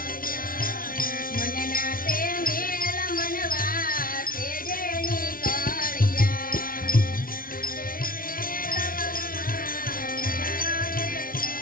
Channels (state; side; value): late; right; 0.42 ms